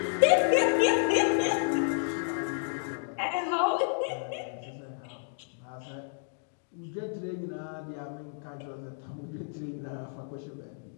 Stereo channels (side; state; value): right; silent; digital silence